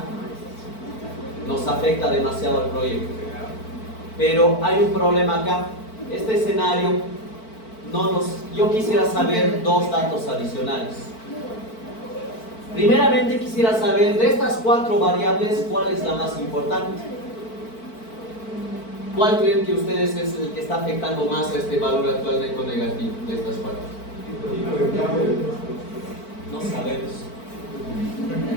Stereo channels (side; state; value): right; late; 4.5 ms